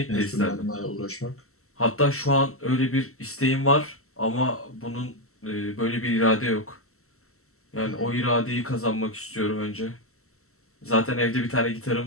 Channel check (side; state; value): right; late; 0.63 ms